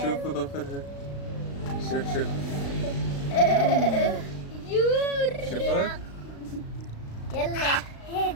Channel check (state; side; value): late; right; 36 ms